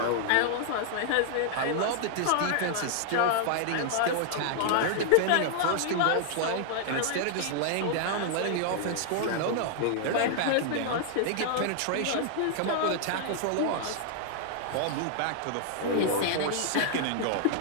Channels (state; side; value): different; both; correlation -0.01